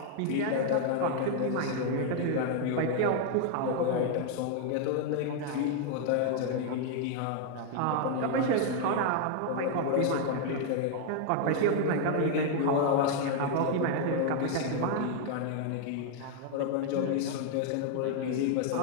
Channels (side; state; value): both; different; correlation 0.00